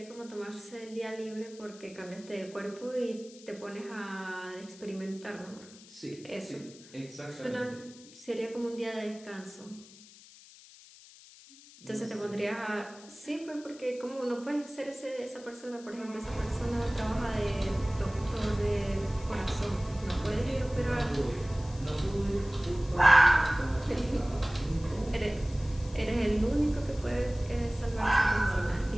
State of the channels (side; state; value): left; noise; hiss, 21 dB below the sound